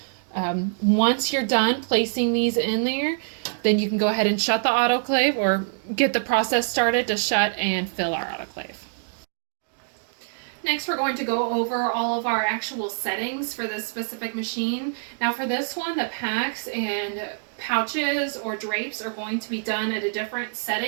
Once you're done placing these in there, then you can go ahead and shut the autoclave or get the process started to shut and fill our autoclave. Next, we're going to go over all of our actual settings for this specific machine. Now for this one, the packs and pouches or drapes are going to be done at a different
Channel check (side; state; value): left; silent; digital silence